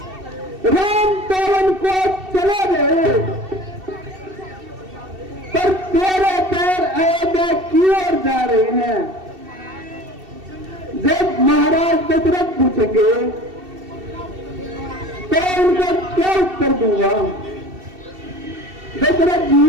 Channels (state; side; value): late; left; 2.7 ms